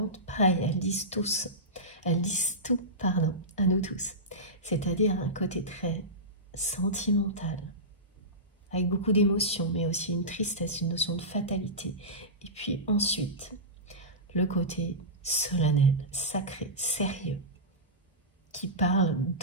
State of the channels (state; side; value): normal; both; correlation -0.17